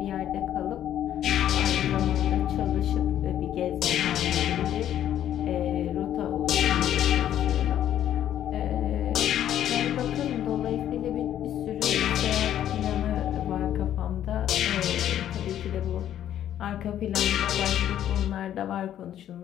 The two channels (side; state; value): right; quieter; 11.1 dB